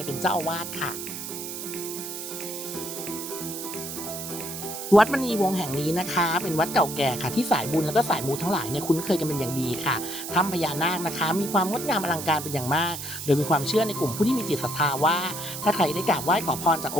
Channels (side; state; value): right; noise; hiss, 8 dB below the sound